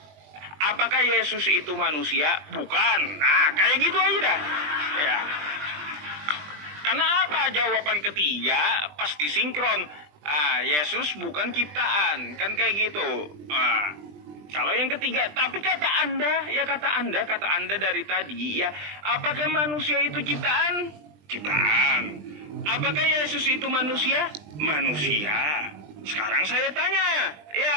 Apakah Yesus itu manusia? Bukan. Nah, kayak gitu aja dah. Ya. Karena apa? Jawaban ketiga pasti sinkron. Yesus bukan ciptaan. Kan kayak gitu. Kalau yang ketiga, tapi kata Anda dari tadi ya, apakah manusia itu ciptaan? Ciptaan. Apakah Yesus itu manusia? Manusia. Sekarang saya tanya,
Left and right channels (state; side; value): late; left; 20 ms